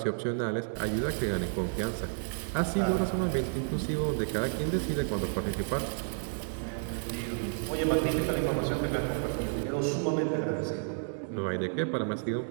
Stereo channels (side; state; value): left; silent; digital silence